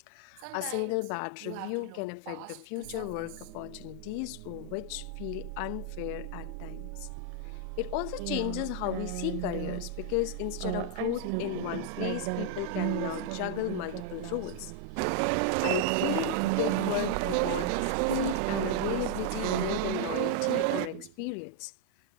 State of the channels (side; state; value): both; different; correlation -0.01